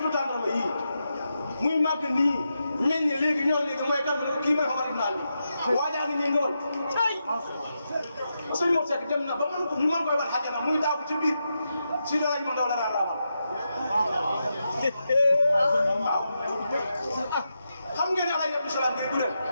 tàndarma yii muy màgg nii meññ léegi ñor léegi mooy kat kii mooy Omar ibn Ali waajaa ngi nii ngóor sëñ Mor Seck dem na ba mën ko ñu mën koy war xajana muy daagu ci biir si dara ñu ndaw la daan raamal waaw xam ngeen ne Alaaji Abdou Salaam bi du leen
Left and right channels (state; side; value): inverted; both; correlation -0.86